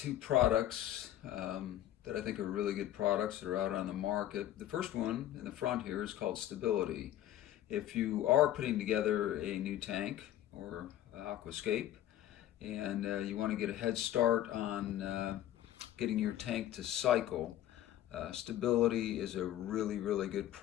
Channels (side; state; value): right; quieter; 12.6 dB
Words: products that I think are really good products that are out on the market. The first one in the front here is called Stability. If you are putting together a new tank or aquascape and you want to get a head start on getting your tank to cycle, Stability is a really, really good